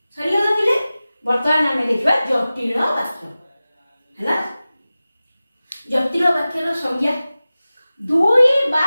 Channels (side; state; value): both; inverted; correlation -0.96